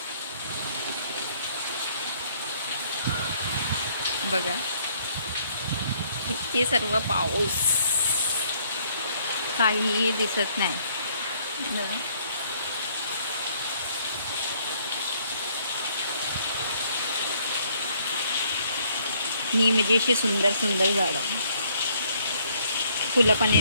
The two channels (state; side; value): inverted; both; correlation -0.65